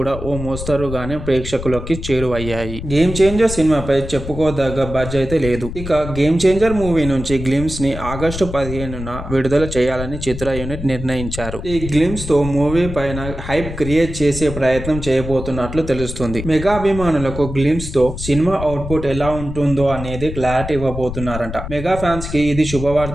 ఓ మోస్తరుగానే ప్రేక్షకులకి చేరువయ్యాయి. గేమ్ చేంజర్ సినిమాపై చెప్పుకోదగ్గ బజ్ అయితే లేదు. ఇక గేమ్ చేంజర్ మూవీ నుంచి గ్లిమ్స్ ని ఆగస్టు 15న విడుదల చేయాలని చిత్ర యూనిట్ నిర్ణయించారు. ఈ గ్లిమ్స్ తో మూవీ పైన హైప్ క్రియేట్ చేసే ప్రయత్నం చేయబోతున్నట్లు తెలుస్తుంది. మెగా అభిమానులకు గ్లిమ్స్ తో సినిమా అవుట్పుట్ ఎలా ఉంటుందో అనేది క్లారిటీ ఇవ్వబోతున్నారంట. మెగా ఫ్యాన్స్ కి ఇది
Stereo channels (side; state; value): left; noise; rumble, 8 dB below the sound